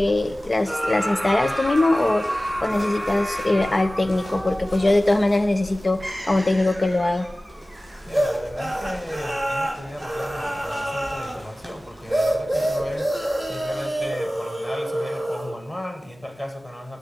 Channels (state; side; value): normal; both; correlation 0.97